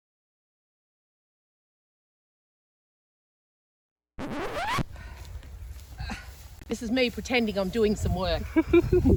This is me pretending I'm doing some work.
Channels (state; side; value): identical; both; correlation 1.00